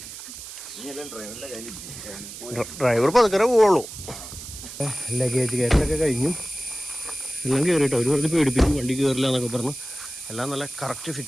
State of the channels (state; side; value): noise; right; hiss, 12 dB below the sound